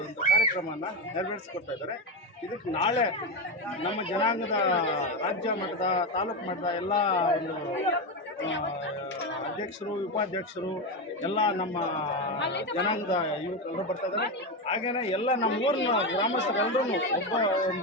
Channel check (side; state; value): both; normal; correlation 0.13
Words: ಒಂದು ಕಾರ್ಯಕ್ರಮವನ್ನು ನೆರವೇರಿಸಿಕೊಡ್ತಾ ಇದ್ದಾರೆ. ಇದಕ್ಕೆ ನಾಳೆ ನಮ್ಮ ಜನಾಂಗದ ರಾಜ್ಯ ಮಟ್ಟದ, ತಾಲೂಕು ಮಟ್ಟದ ಎಲ್ಲ ಒಂದು ಅಧ್ಯಕ್ಷರು, ಉಪಾಧ್ಯಕ್ಷರು ಎಲ್ಲ ನಮ್ಮ ಜನಾಂಗದ ಯುವಕರು ಬರ್ತಾ ಇದ್ದಾರೆ. ಹಾಗೆಯೇ ಎಲ್ಲ ನಮ್ಮ ಊರಿನ ಗ್ರಾಮಸ್ಥರೆಲ್ಲರೂ